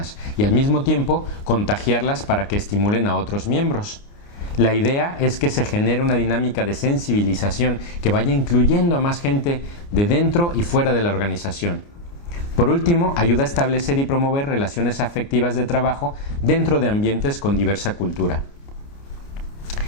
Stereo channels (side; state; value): right; late; 29 ms